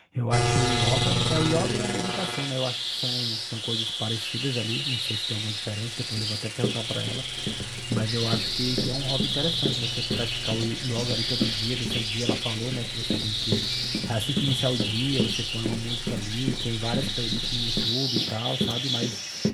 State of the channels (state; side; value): identical; both; correlation 1.00